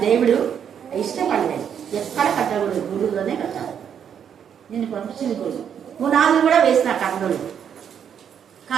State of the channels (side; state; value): left; quieter; 8.3 dB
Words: దేవుడు ఇష్టపడలేదు. ఎక్కడ కట్టకూడదు, గురువులోనే కట్టాలి. నేను పంపించింది గురువు. పునాదులు కూడా వేసిన కట్టలు,